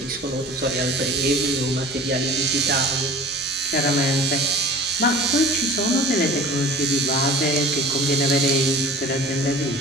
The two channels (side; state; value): both; normal; correlation 0.41